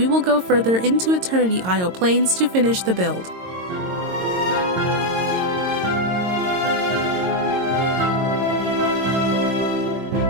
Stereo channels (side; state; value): left; late; 22 ms